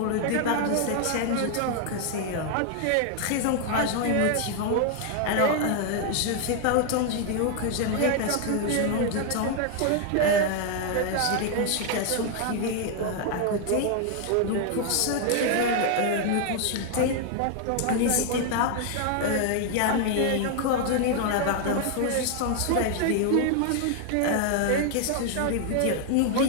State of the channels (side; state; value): both; different; correlation 0.00